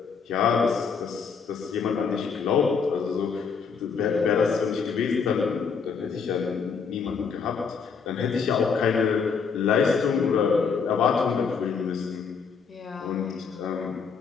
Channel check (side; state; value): right; quieter; 5.8 dB